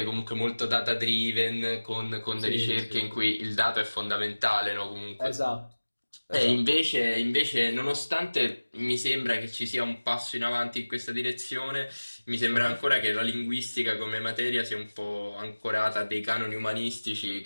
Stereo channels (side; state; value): both; inverted; correlation -1.00